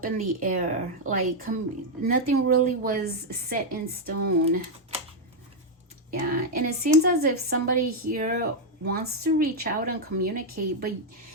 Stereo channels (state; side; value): normal; both; correlation 0.00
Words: in the air, like nothing really was set in stone. Yeah, and it seems as if somebody here wants to reach out and communicate,